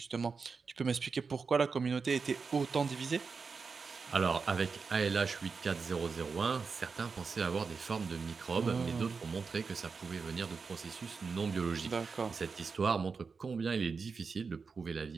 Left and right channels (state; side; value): quieter; left; 5.0 dB